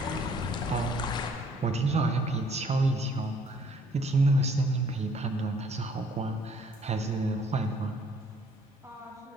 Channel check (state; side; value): normal; both; correlation 0.61